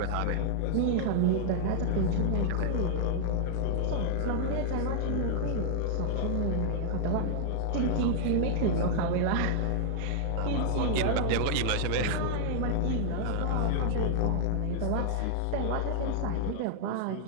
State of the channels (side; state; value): both; different; correlation 0.00